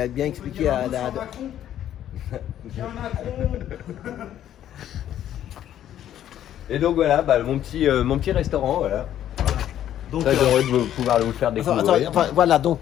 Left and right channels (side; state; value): right; quieter; 11.2 dB